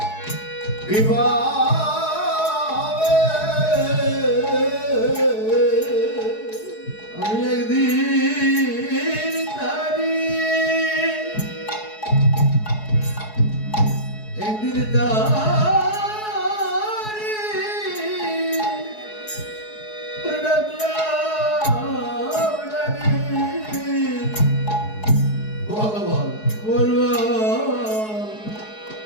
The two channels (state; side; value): late; right; 4.7 ms